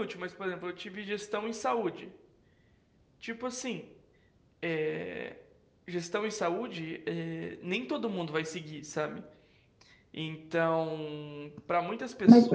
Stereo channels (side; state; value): both; identical; correlation 1.00